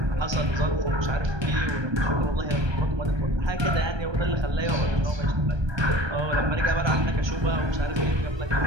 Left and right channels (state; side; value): late; left; 1.2 ms